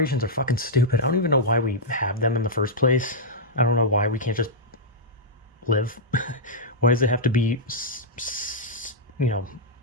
are fucking stupid. I don't even know why we have them in the first place. I don't know why we can't just live. Why does it have to be, you know,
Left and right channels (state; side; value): normal; both; correlation -0.08